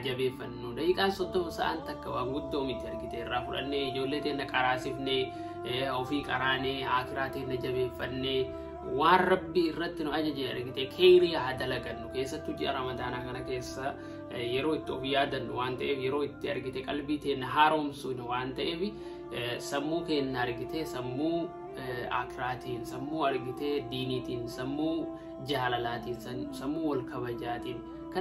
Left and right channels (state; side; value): identical; both; correlation 1.00